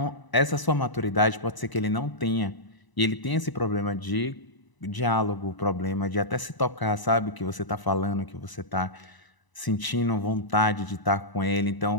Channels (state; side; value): late; right; 1.0 ms